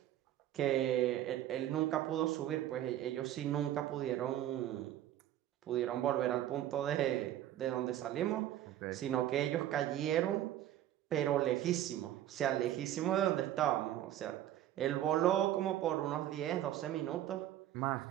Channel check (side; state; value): left; quieter; 12.5 dB